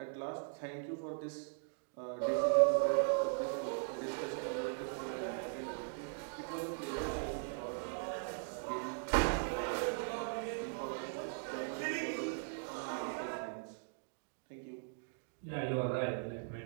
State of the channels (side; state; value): left; silent; digital silence